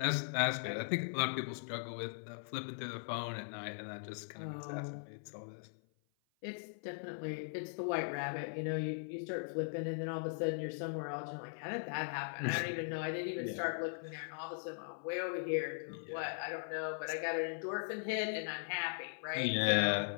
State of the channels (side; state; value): right; silent; 51 dB below the other